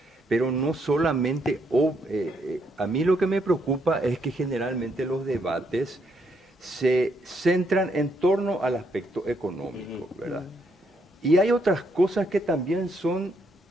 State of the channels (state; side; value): normal; both; correlation 0.74